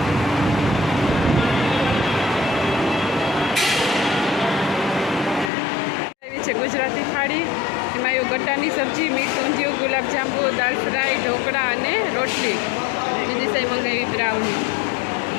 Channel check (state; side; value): drops out; right; at 5.5 s